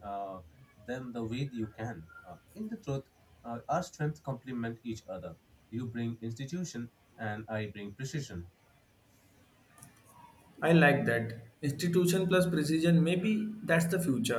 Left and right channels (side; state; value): both; identical; correlation 1.00